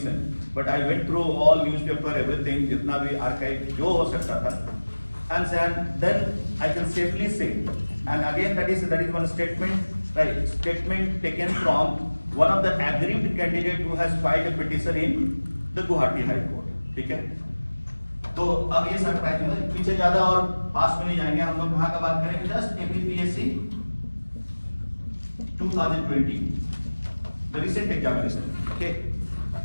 But I went through all newspaper, everything, जितना भी archive जो हो सकता था, and then I can safely say, and again that is one statement, right? Statement taken from one of the aggrieved candidate who has filed a petition in the Guwahati High Court. ठीक है? तो अब ये surprise है, पीछे ज्यादा और पास में नहीं जाएंगे, हम लोग कहाँ का बात करेंगे? Just APPSC 2020, the recent examination. Okay,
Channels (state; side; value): inverted; both; correlation -1.00